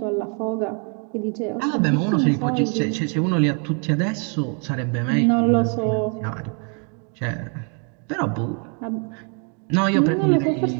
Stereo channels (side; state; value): left; quieter; 39.2 dB